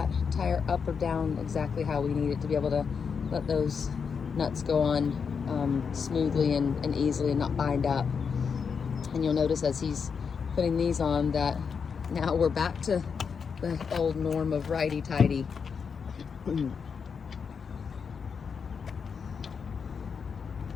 tire up or down exactly how we need it to be able to let those nuts go on smoothly and easily and not bind up. And you'll notice as he's putting these on that now we're back to the old norm of righty-tighty. A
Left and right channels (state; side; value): quieter; right; 6.1 dB